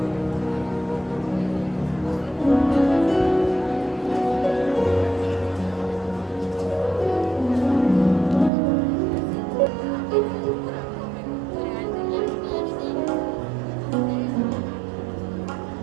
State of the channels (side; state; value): left; drops out; at 8.5 s